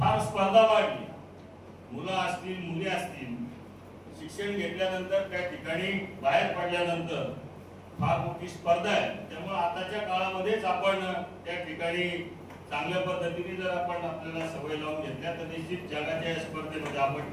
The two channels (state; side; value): identical; both; correlation 1.00